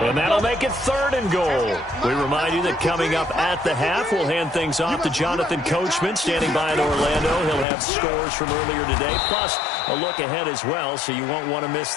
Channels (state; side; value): drops out; right; at 7.7 s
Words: And that'll make it 3rd and goal. We remind you that coming up at the half, we'll hand things off to Jonathan Coachman standing by in Orlando. He'll have scores from earlier today, plus a look ahead as well, so you won't want to miss